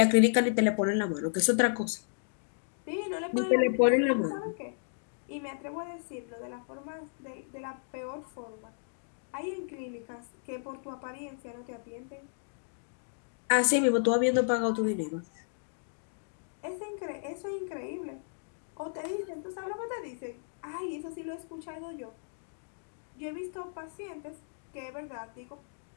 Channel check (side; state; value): right; silent; digital silence